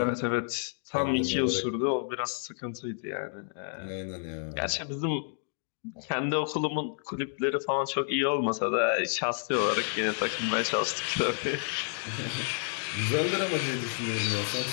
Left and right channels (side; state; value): right; silent; digital silence